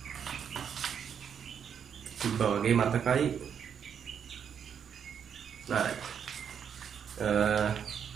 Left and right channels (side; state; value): left; quieter; 7.8 dB